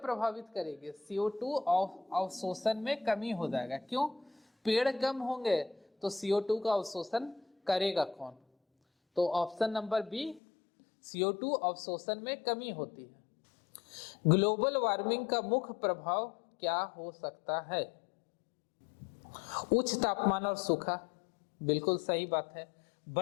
करेगी? CO2 अवशोषण में कमी हो जाएगा। क्यों? पेड़ कम होंगे तो CO2 का अवशोषण करेगा कौन? तो ऑप्शन नंबर बी, CO2 अवशोषण में कमी होती है। ग्लोबल वार्मिंग का मुख्य प्रभाव क्या हो सकता है? उच्च तापमान और सूखा, बिल्कुल सही बात है।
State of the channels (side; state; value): right; drops out; at 10.4 s